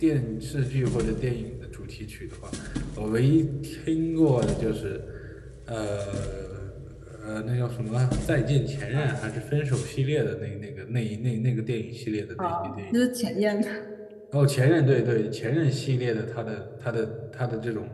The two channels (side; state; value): both; identical; correlation 1.00